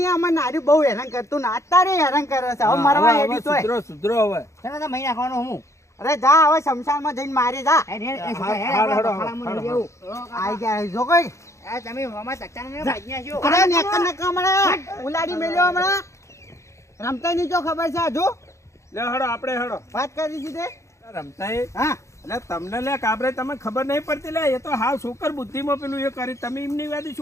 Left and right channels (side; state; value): right; late; 0.14 ms